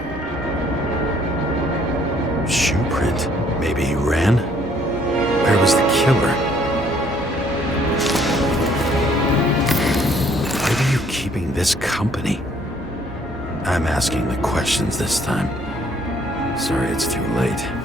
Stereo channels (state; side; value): normal; both; correlation 0.63